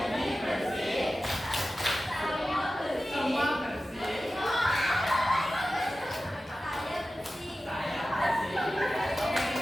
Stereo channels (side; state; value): both; normal; correlation 0.94